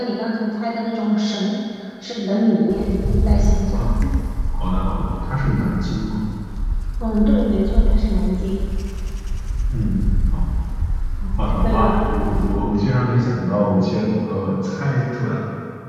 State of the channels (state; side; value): identical; both; correlation 1.00